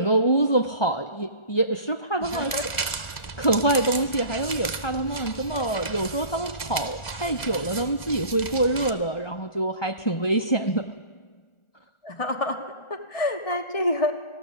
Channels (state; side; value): late; right; 1.4 ms